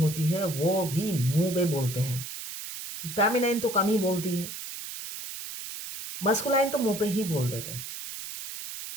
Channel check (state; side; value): noise; right; hiss, 9 dB below the sound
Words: है वो भी मुंह पे बोलते हैं, फेमिनाइन तो कम ही बोलती है, मस्कुलाइन तो मुंह पे ही बोल देते हैं,